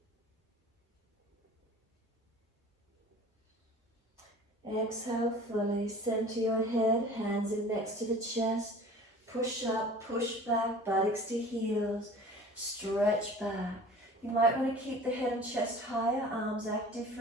Exhale fully, center your head, hands in next to the chest. Push up, push back, buttocks to heels, stretch back. You might want to keep the head and chest higher, arms active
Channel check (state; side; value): normal; both; correlation 0.44